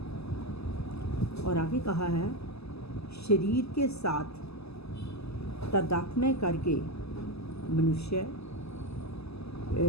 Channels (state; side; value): late; right; 0.79 ms